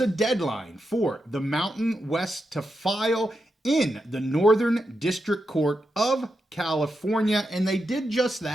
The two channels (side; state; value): both; normal; correlation 0.86